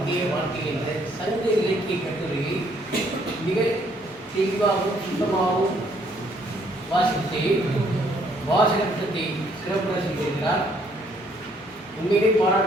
வாழ்க்கையை சங்க இலக்கிய கட்டுரையை மிக தெளிவாகவும் சுத்தமாகவும் வாசித்து வாசகத்தை சிறப்புற செய்திருக்கிறார். உண்மையிலே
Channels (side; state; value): both; normal; correlation 0.66